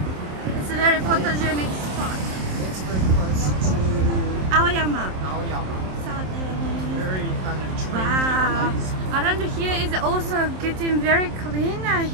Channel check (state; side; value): late; left; 27 ms